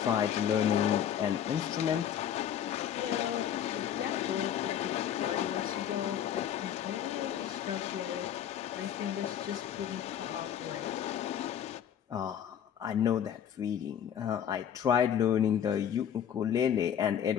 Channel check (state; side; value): quieter; right; 9.4 dB